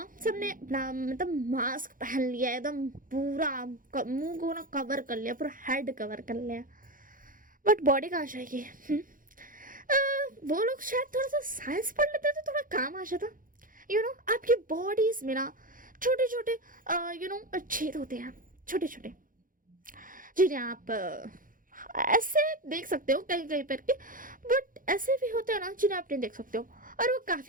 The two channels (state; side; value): late; left; 0.40 ms